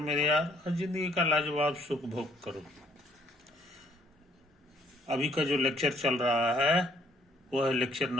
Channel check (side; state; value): both; normal; correlation 0.65